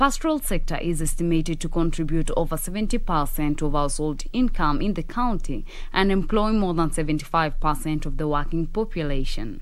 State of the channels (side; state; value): both; identical; correlation 1.00